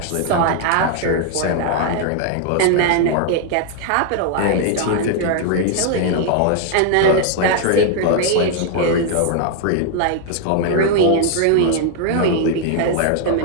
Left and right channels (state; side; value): different; both; correlation 0.00